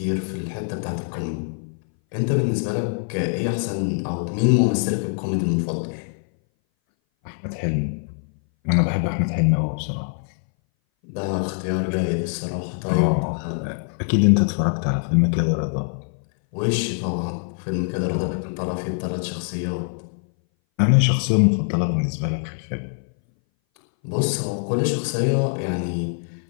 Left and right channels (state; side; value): silent; right; 60 dB below the other